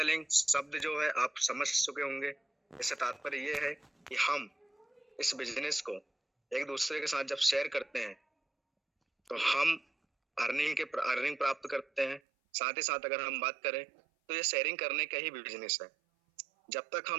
शब्द जो है आप समझ चुके होंगे। इससे तात्पर्य ये है कि हम इस बिजनेस को एक दूसरे के साथ जब शेयर करते हैं तो हम अर्निंग प्राप्त करते हैं। साथ ही साथ अगर हम बात करें तो ये शेयरिंग करने का ही बिजनेस है। जब तक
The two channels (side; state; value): left; drops out; at 12.2 s